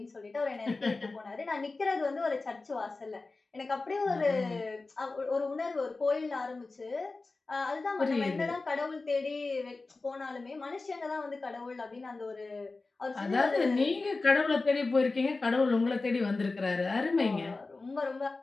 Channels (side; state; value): right; quieter; 3.6 dB